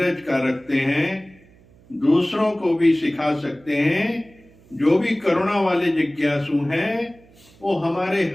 का रखते हैं, दूसरों को भी सिखा सकते हैं। जो भी करुणा वाले जिज्ञासु हैं वो हमारे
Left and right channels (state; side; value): noise; right; hum, 28 dB below the sound